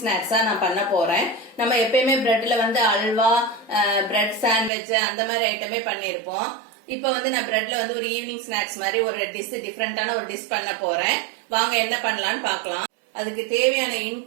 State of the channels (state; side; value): drops out; left; at 4.7 s